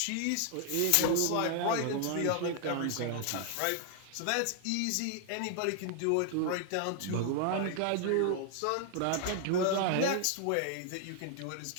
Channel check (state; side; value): different; both; correlation 0.00